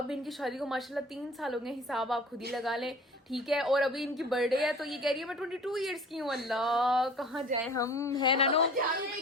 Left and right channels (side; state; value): both; normal; correlation 0.45